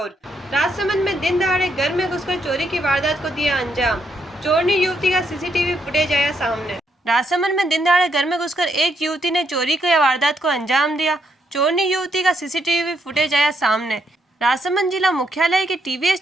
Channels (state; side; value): normal; both; correlation 0.76